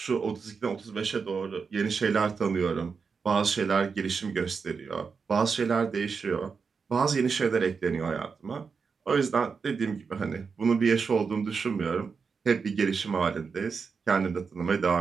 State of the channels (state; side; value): quieter; left; 5.4 dB